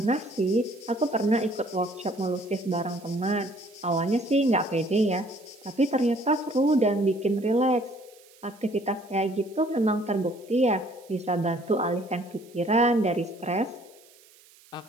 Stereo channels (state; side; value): noise; right; hiss, 27 dB below the sound